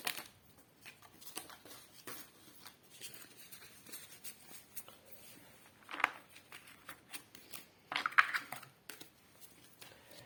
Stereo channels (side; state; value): both; identical; correlation 1.00